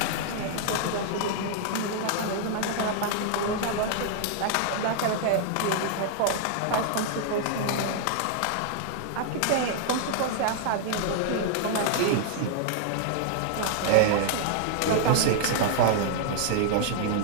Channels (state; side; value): different; both; correlation -0.01